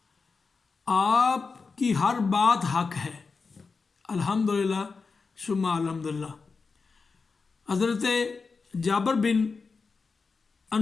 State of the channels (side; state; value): right; quieter; 4.6 dB